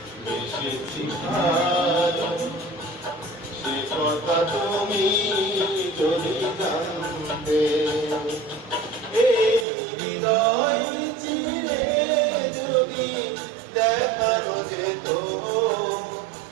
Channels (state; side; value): drops out; left; at 9.7 s